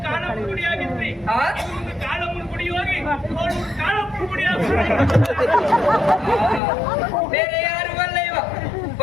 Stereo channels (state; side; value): drops out; right; at 6.6 s